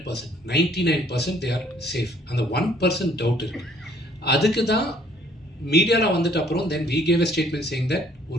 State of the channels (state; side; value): normal; both; correlation 0.61